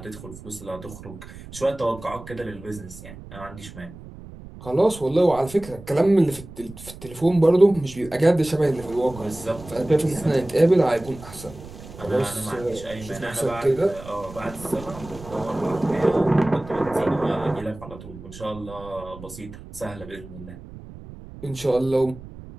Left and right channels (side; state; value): right; noise; rumble, 16 dB below the sound